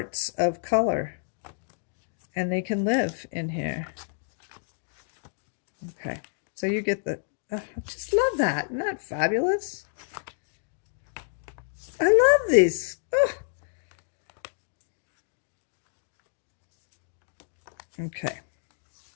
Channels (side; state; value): right; silent; digital silence